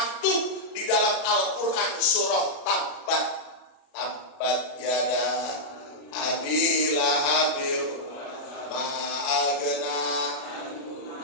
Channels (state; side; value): late; right; 37 ms